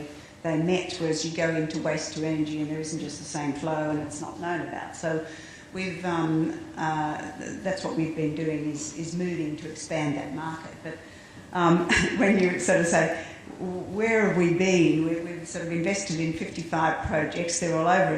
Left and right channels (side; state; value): both; identical; correlation 1.00